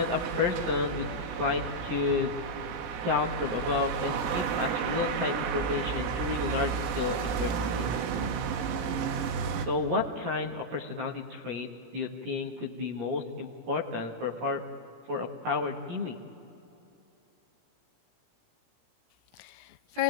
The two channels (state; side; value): late; left; 18 ms